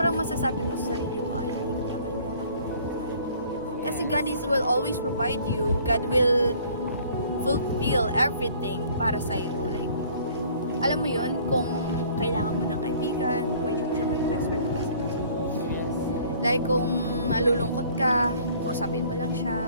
masasabi mo sa sarili mo, ay, hindi ko na kailangan yung buhay. Kasi God will always provide you. God will fulfill everything para sa'yo. Like, alam mo yun, kung kailangan mo ng kaibigan, pwede mo siya maging best friend, di ba? Yes. Like, kung nalulungkot ka, kausapin mo lang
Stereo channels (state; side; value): inverted; both; correlation -0.54